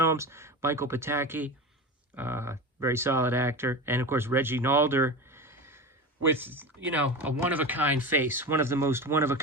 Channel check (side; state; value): both; normal; correlation 0.27